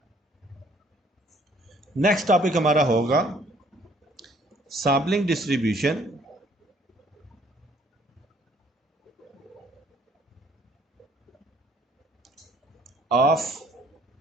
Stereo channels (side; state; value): both; normal; correlation 0.61